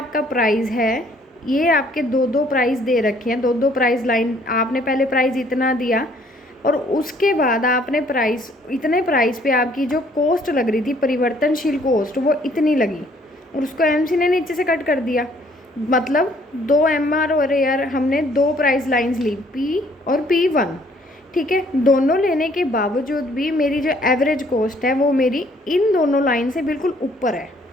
प्राइस है, ये आपके दो प्राइस दे रखे हैं, दो प्राइस लाइन। आपने पहले प्राइस इतना दिया और उसके बाद आपने प्राइस, इतने प्राइस पे आपकी जो कॉस्ट लग रही थी, परिवर्तनशील कॉस्ट, वो इतनी लगी और उसको एमसी ने नीचे से कट कर दिया। मतलब 2 एमआर और एआर हमने दो प्राइस लाइंस ली, पी और P1, ठीक है। दोनों लेने के बावजूद भी मेरी जो एवरेज कॉस्ट है वो मेरी इन दोनों लाइन से बिल्कुल ऊपर है,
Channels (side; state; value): both; normal; correlation 0.62